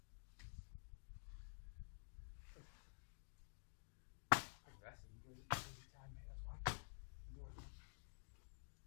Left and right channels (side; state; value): right; silent; digital silence